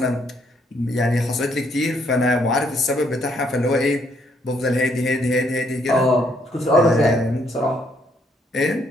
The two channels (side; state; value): both; normal; correlation 0.70